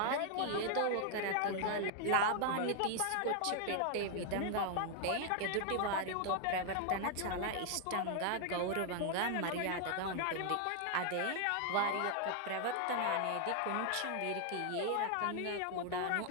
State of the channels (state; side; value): different; both; correlation 0.00